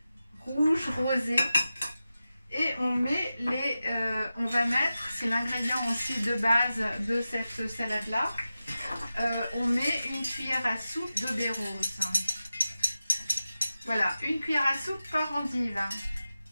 rouge, rosé. Et on met on va mettre, c'est l'ingrédient aussi de base de cette salade-là. On met une cuillère à soupe de baies roses. Voilà, une cuillère à soupe par endive.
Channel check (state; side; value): inverted; both; correlation -0.93